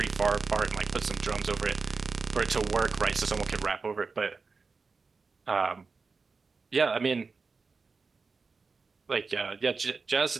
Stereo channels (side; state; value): left; quieter; 4.5 dB